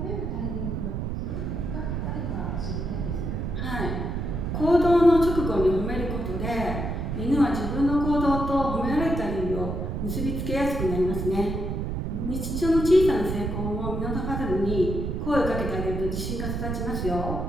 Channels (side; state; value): right; noise; rumble, 3 dB below the sound